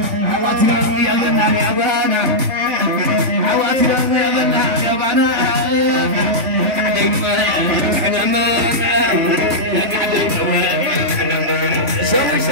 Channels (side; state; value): left; late; 3.5 ms